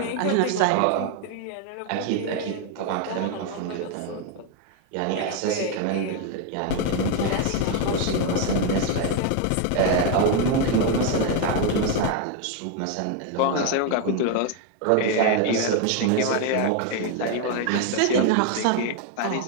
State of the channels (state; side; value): different; both; correlation 0.01